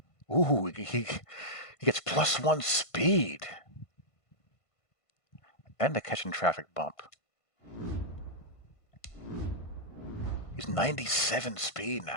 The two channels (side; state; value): right; late; 1.5 ms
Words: Ooh, he gets +1 speed. And a catch and traffic bump. He's 97 speed